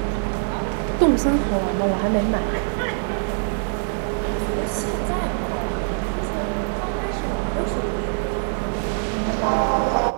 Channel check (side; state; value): left; silent; 63 dB below the other